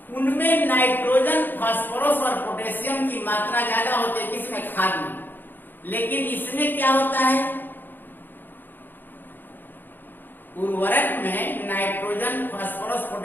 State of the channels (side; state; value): right; late; 0.092 ms